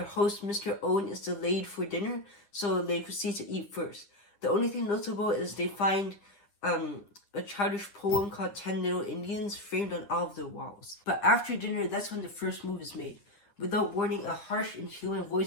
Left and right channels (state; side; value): late; right; 9.9 ms